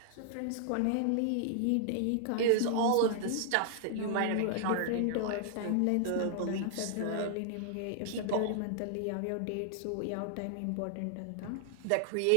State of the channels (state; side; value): different; both; correlation -0.01